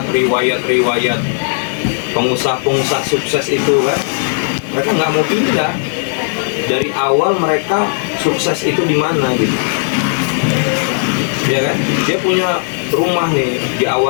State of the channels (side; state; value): right; silent; digital silence